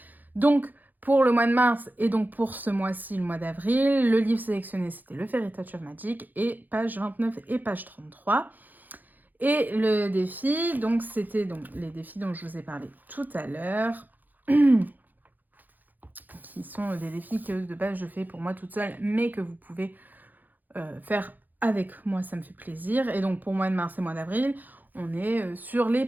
Donc, pour le mois de mars, et donc pour ce mois-ci, le mois d'avril, le livre sélectionné, c'était le Fairy Touch of Magic, et page 29 et page 33. Et le défi, donc c'était donc les défis dont je vous ai parlé tout à l'heure, qui sont des défis que de base je fais pour moi toute seule, mais que vous pouvez faire avec moi, ça me fait plaisir. Et donc pour mois de mars et mois d'avril, on est sur les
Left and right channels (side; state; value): left; late; 0.085 ms